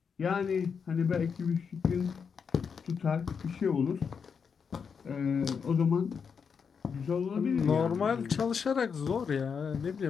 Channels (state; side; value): quieter; right; 6.3 dB